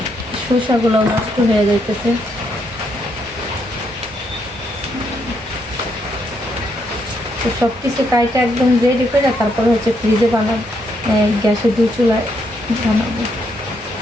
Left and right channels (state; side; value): normal; both; correlation 0.76